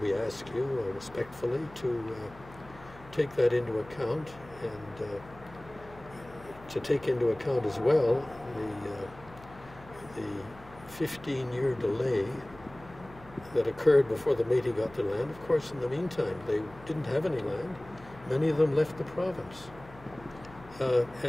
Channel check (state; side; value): noise; left; hum, 20 dB below the sound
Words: we ask you respectfully to take that into account and to take into account as well the 15-year delay that occurred before the Métis got their land. Of course, in the meantime, they didn't have any land. Many of them left the province.